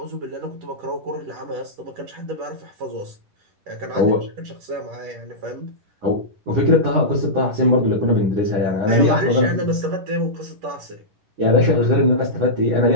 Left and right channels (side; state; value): left; late; 10 ms